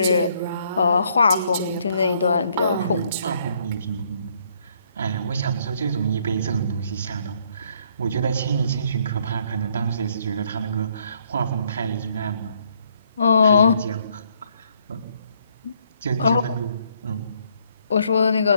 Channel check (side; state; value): both; inverted; correlation -0.68